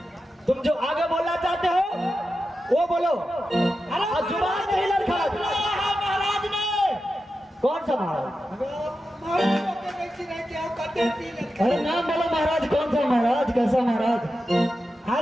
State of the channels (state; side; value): normal; both; correlation 0.91